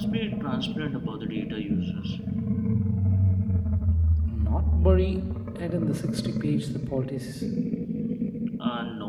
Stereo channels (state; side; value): identical; both; correlation 1.00